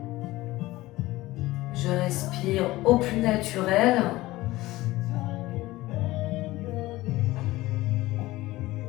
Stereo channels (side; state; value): right; quieter; 18.2 dB